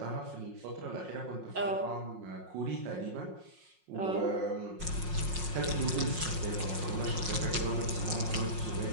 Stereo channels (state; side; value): late; left; 5.5 ms